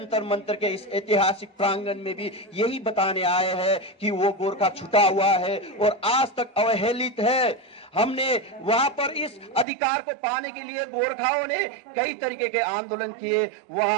मंतर के इस ऐतिहासिक प्रांगण में भी यही बताने आए हैं कि वो गोरखा छूटा हुआ है और आज तक अवहेलित है। हमने वहां पर इस अधिकार को पाने के लिए गोरखाओं ने कई तरीके के आंदोलन किए,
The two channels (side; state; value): left; drops out; at 9.7 s